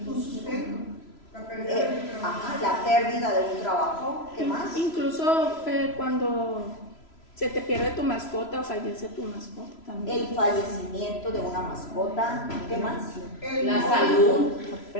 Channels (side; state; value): right; late; 3.0 ms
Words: Tu sustento. La pérdida de un trabajo. Ajá, la pérdida de un trabajo. ¿Qué más? Incluso cuando se te pierde tu mascota o fallece tu mascota también. El fallecimiento de una mascota. ¿Qué más? La salud. La